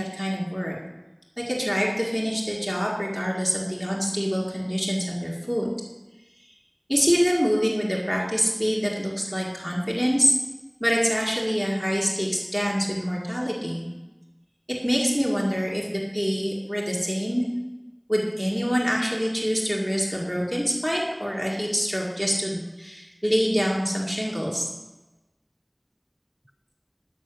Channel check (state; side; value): identical; both; correlation 1.00